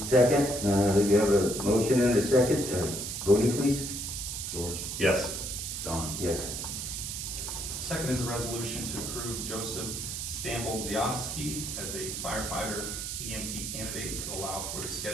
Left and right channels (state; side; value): noise; right; hiss, 5 dB below the sound